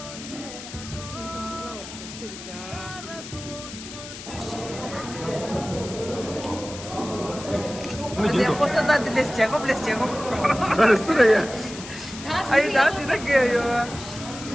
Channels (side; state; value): left; noise; hiss, 12 dB below the sound